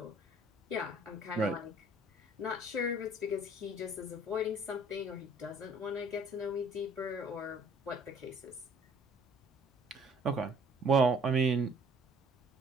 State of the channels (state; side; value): normal; both; correlation 0.56